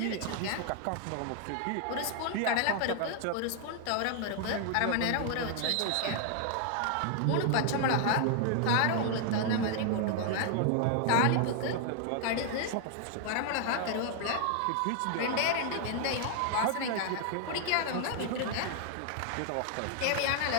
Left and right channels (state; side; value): different; both; correlation 0.00